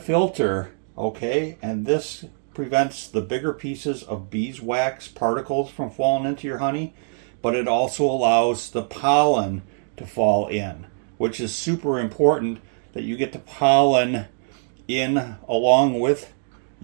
okay? And this prevents the bigger pieces of beeswax particles from falling into your honey, but it also allows the pollen to fall in, which is super important, that you get the pollen in along with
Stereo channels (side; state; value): left; silent; 63 dB below the other